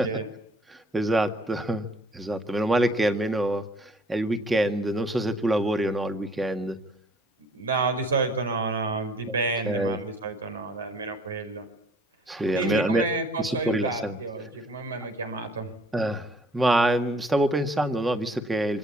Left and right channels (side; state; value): both; normal; correlation 0.56